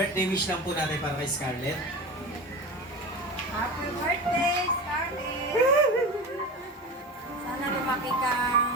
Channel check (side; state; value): both; normal; correlation 0.29